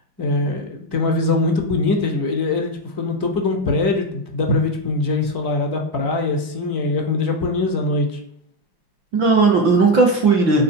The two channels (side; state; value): left; late; 5.8 ms